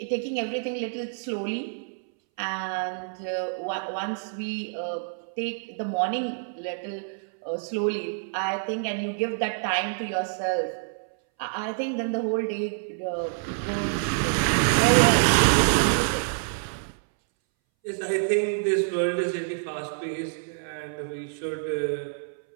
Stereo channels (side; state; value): left; silent; 60 dB below the other